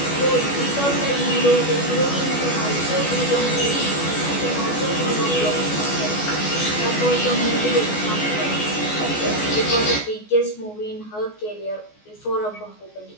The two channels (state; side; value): late; right; 14 ms